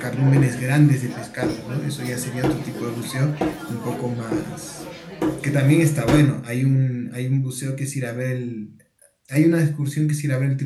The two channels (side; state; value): both; identical; correlation 1.00